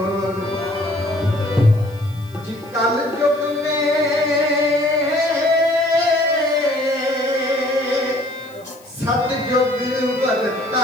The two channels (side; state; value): left; noise; hiss, 27 dB below the sound